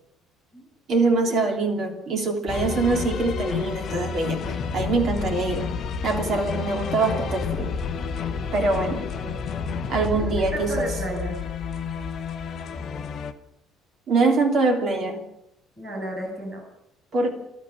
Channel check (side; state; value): both; normal; correlation 0.57